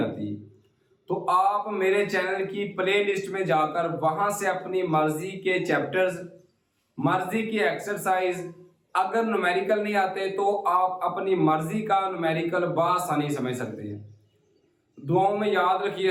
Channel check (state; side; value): identical; both; correlation 1.00